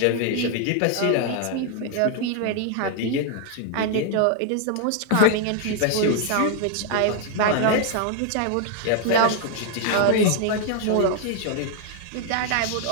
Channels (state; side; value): different; both; correlation 0.00